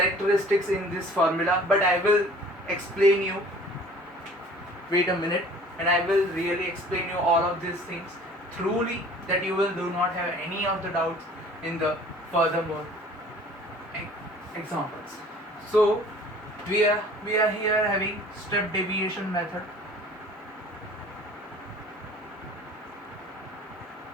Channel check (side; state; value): both; normal; correlation 0.49